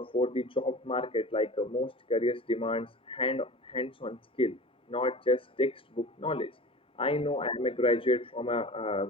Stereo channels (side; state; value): both; normal; correlation 0.37